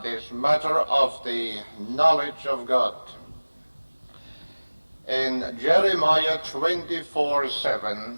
this matter of the knowledge of God. In Jeremiah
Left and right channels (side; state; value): both; inverted; correlation -1.00